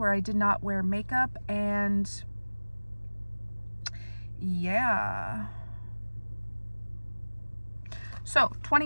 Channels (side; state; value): both; inverted; correlation -1.00